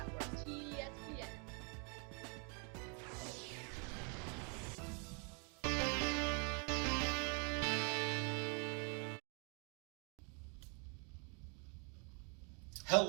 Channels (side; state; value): left; quieter; 36.8 dB